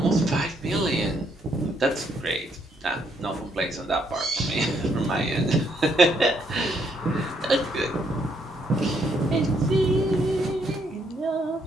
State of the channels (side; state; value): both; normal; correlation 0.72